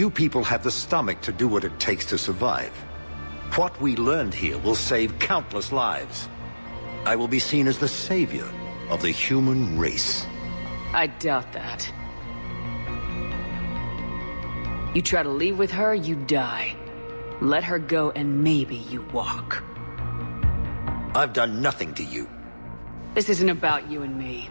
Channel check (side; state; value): both; inverted; correlation -1.00